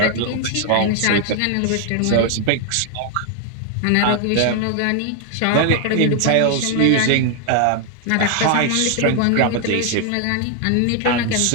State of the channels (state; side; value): different; both; correlation 0.00